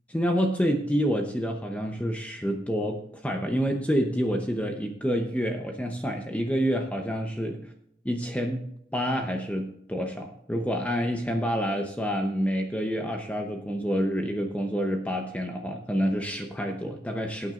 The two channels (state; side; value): normal; both; correlation 0.81